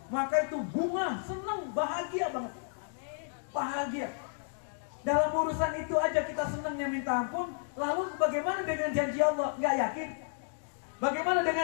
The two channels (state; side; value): silent; right; digital silence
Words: maka itu bunga, senang, bahagia banget. Bahagia. Dalam urusan itu aja kita senangnya minta ampun. Lalu bagaimana dengan janji Allah? Nggak yakin. Bagaimana